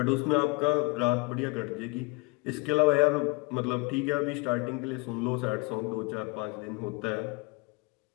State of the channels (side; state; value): right; quieter; 26.8 dB